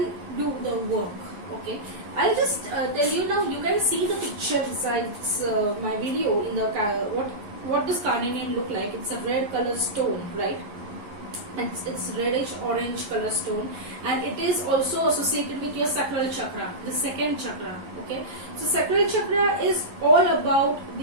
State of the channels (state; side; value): late; left; 11 ms